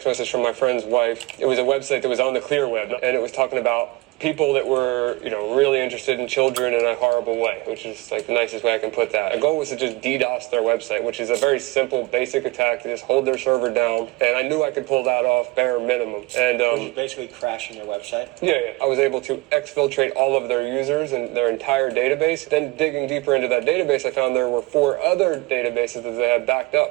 message from my friend's wife. It was a website that was on the clear web, and it was talking about people that were, really interested in children in a horrible way, which is like the nicest way I can put that. The goal was to just DDoS their website, which is a very simple, basic attack to just hold their server down. And I knew I could pull that off bare minimum. And Which is basically crashing their website. yeah, I was able to exfiltrate all of their users and their entire database. Then digging deeper into that database, I found there were 4 other databases that they had backed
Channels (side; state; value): left; quieter; 21.9 dB